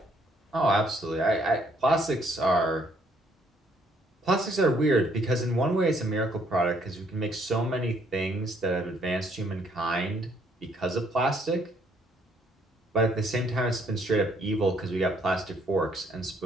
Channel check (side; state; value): both; normal; correlation 0.67